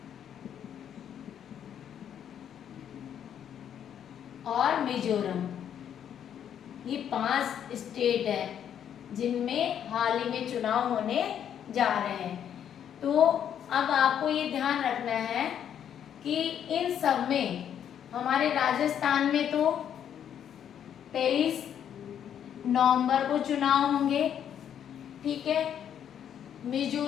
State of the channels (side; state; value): right; quieter; 9.3 dB